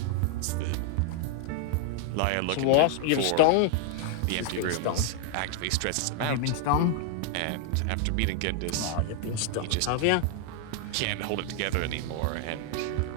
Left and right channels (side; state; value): both; different; correlation 0.00